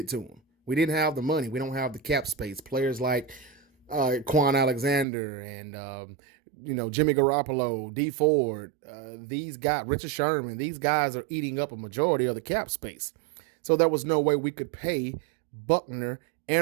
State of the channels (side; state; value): left; drops out; at 5.1 s